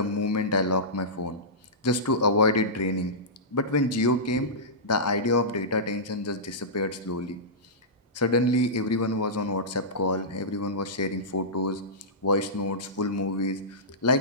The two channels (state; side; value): normal; both; correlation -0.16